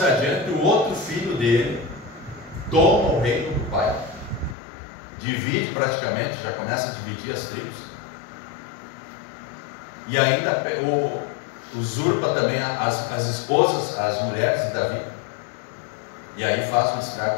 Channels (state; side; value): drops out; right; at 4.5 s